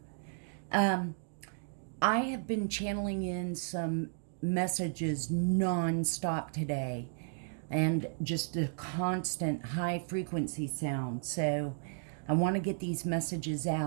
I have been channeling in some messages non-stop today, and just a constant high frequency sound. So I want to get these messages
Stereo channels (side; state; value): left; silent; digital silence